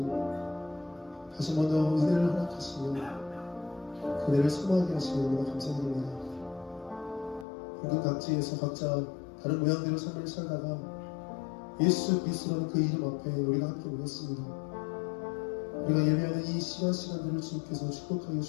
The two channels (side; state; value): right; drops out; at 7.5 s